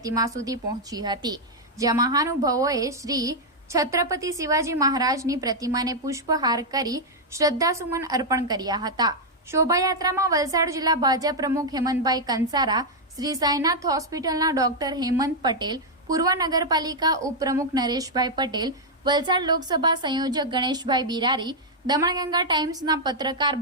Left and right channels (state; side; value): normal; both; correlation -0.03